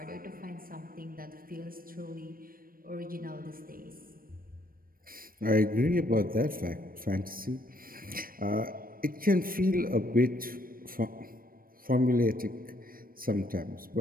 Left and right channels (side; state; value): left; late; 0.41 ms